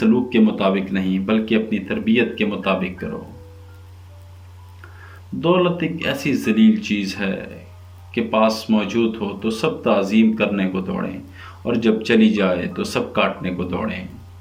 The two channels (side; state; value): both; identical; correlation 1.00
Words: کے مطابق نہیں بلکہ اپنی تربیت کے مطابق کرو۔ دولت ایک ایسی ذلیل چیز ہے کہ پاس موجود ہو تو سب تعظیم کرنے کو دوڑیں، اور جب چلی جائے تو سب کاٹنے کو دوڑیں۔